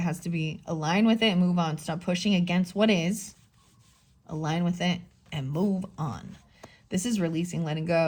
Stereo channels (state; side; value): identical; both; correlation 1.00